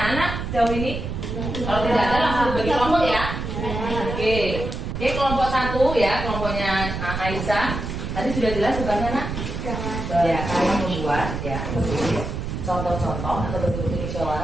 anak jauh ini? Kalau tidak ada langsung bagi kelompok ya. Oke. Oke, kelompok 1 ya, kelompoknya Aisyah. Tadi sudah jelas tugasnya nak? Ya, kalian membuat ya contoh-contoh atau bentuk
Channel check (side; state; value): right; noise; rumble, 5 dB below the sound